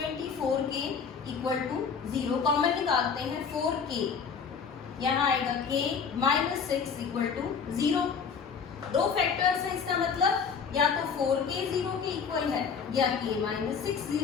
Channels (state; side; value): quieter; right; 6.1 dB